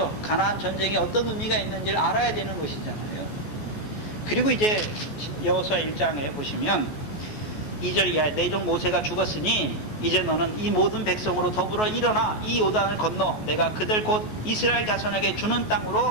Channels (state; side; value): late; right; 14 ms